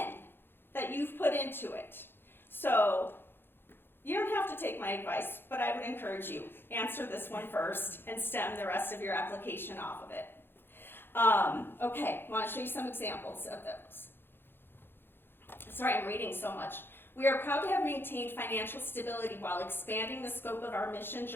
that you've put into it. So you don't have to take my advice, but I would encourage you, answer this one first and stem the rest of your application off of it. Okay, I want to show you some examples of those. Sorry, I'm reading so much. We are proud to have maintained financial stability while expanding the scope of our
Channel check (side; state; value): right; late; 0.10 ms